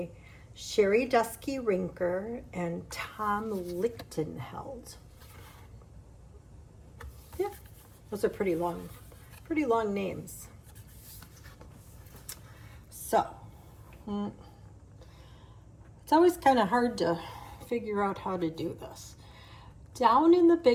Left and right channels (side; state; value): both; identical; correlation 1.00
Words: Sherry Dusky Rinker and Tom Lichtenheld. Yeah, those are pretty long names. So, it's always kind of hard to figure out how to do this. Down in the